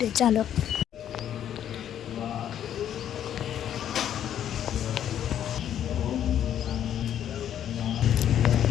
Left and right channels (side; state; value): right; quieter; 10.2 dB